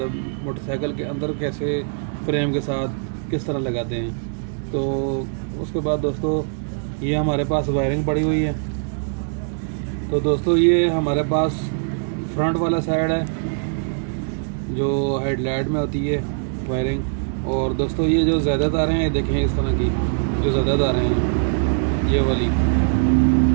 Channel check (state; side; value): silent; left; digital silence